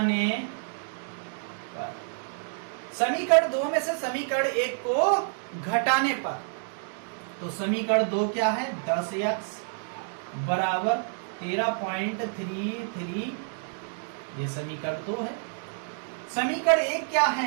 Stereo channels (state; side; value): silent; left; digital silence